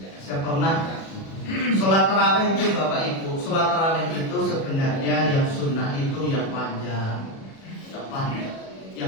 Saya pernah sholat tarawih itu Bapak Ibu, sholat tarawih itu sebenarnya yang sunnah itu yang panjang,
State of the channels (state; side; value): late; right; 37 ms